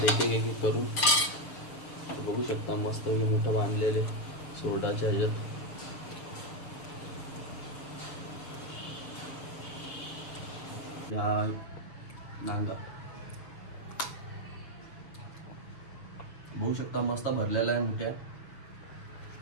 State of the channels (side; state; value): right; late; 6.8 ms